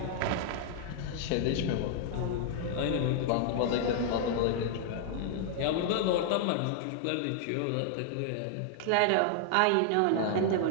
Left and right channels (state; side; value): different; both; correlation -0.01